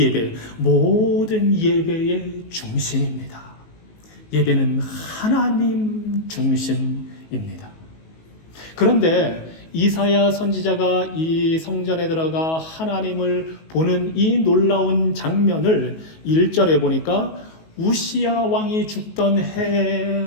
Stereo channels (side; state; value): right; late; 19 ms